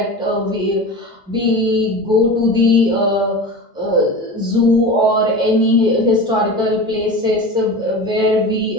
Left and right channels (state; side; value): normal; both; correlation 0.31